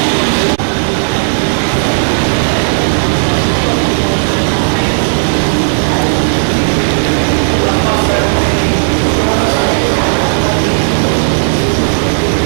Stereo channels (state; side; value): silent; left; digital silence